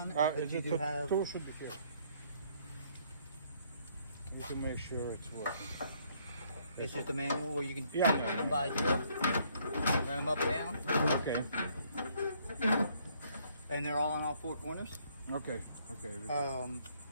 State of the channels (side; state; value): both; inverted; correlation -0.66